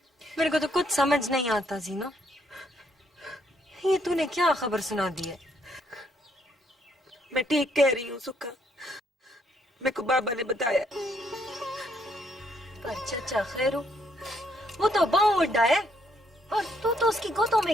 मेरे को तो कुछ समझ नहीं आता जीना, ये तूने क्या खबर सुना दी है? मैं ठीक कह रही हूँ सुखा, मेरे को बाबा ने बताया। पर चचा खैरू, वो तो बहुत बड़ा है और तू तो उसकी गोदों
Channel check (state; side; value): normal; both; correlation 0.71